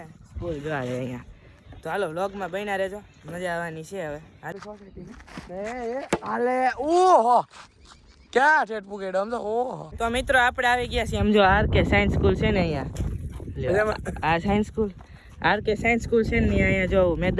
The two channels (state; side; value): identical; both; correlation 1.00